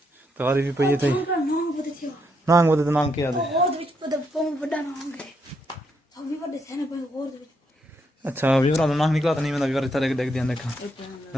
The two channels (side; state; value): both; normal; correlation 0.78